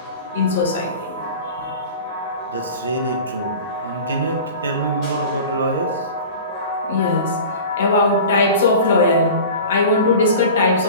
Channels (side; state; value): both; inverted; correlation -0.36